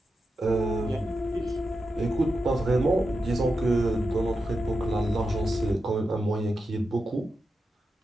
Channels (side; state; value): both; normal; correlation 0.89